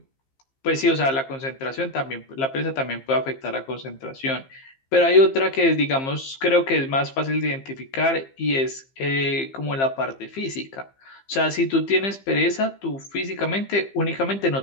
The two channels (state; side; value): late; right; 15 ms